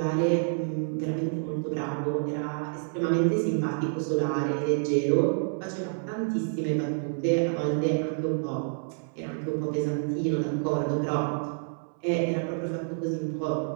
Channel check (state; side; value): silent; left; 59 dB below the other